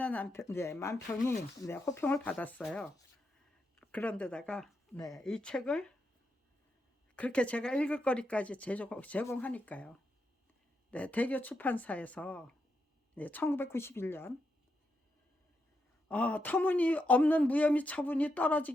만평이 호평을 받았어요. 그런데다가 이 책을 그렇게 제가 읽을 거리까지 제공하니까요. 대교 출판사에서 1991년 터무니없는 무혐의 처분이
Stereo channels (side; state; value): both; normal; correlation 0.83